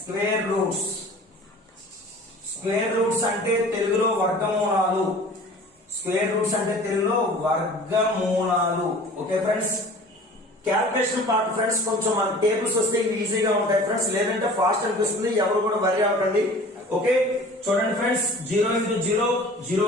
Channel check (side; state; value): both; normal; correlation 0.44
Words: స్క్వేర్ రూట్స్ అంటే తెలుగులో వర్గమూలాలు. స్క్వేర్ రూట్స్ అంటే తెలుగులో వర్గమూలాలు. Okay friends, calculation part friends కొంచెం మన టేబుల్స్ వస్తే ఇవి ఈజీగా ఉంటాయి ఫ్రెండ్స్, లేదంటే ఫాస్ట్ అనిపిస్తుంది, ఎవరు కూడా వరి అవ్వకండి. ఓకే చూడండి friends, 0 into 0 0